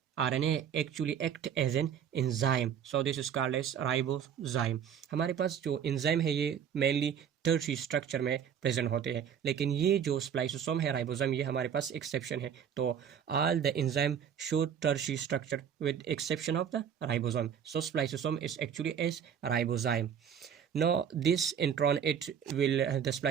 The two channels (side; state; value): left; quieter; 8.3 dB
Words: RNA actually act as an enzyme, so this is called as ribozyme. हमारे पास जो enzyme है ये mainly tertiary structure में present होते हैं, लेकिन ये जो स्प्लाइसोसोम है राइबोसोम, ये हमारे पास एक्सेप्शन है. तो all the enzyme show tertiary structure with exception of the ribosome. So spliceosome is actually as ribozyme. Now this intron, it will the